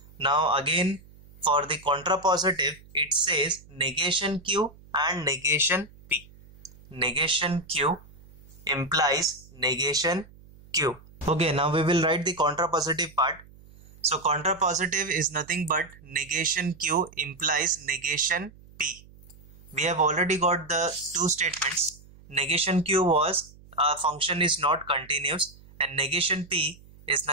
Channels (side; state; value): right; noise; hum, 23 dB below the sound